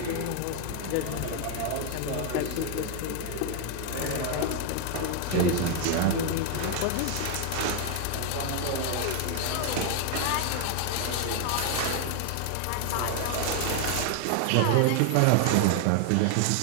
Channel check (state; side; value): different; both; correlation 0.00